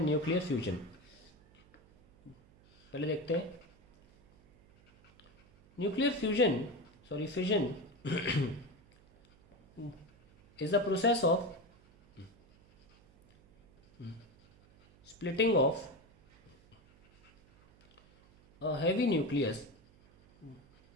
nuclear fusion. पहले देखते हैं nuclear fission is the process of splitting of a heavy nucleus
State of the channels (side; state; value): right; noise; hum, 28 dB below the sound